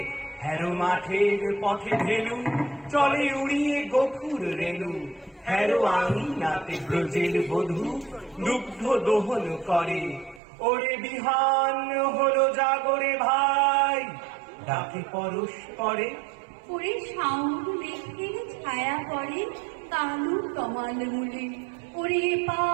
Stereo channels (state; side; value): drops out; left; at 10.4 s